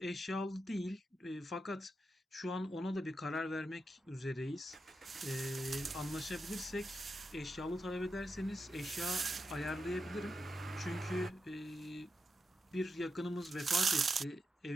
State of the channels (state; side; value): normal; both; correlation 0.87